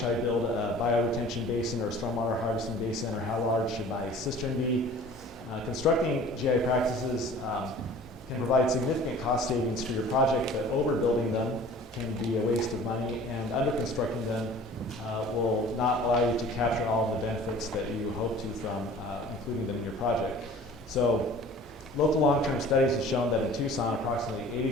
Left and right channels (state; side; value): normal; both; correlation 0.46